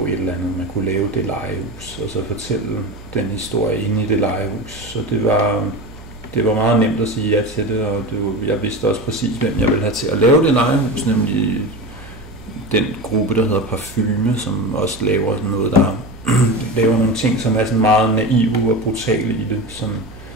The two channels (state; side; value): noise; right; hum, 18 dB below the sound